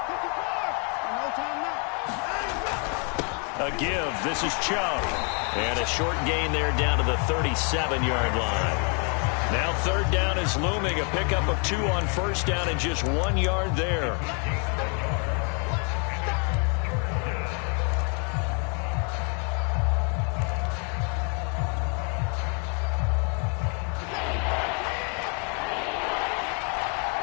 A give. This is Chubb. And a short gain there down to the 37-yard line. Now 3rd down is looming. A pickup of 2 on 1st down and just 1 yard there.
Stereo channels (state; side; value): quieter; right; 38.2 dB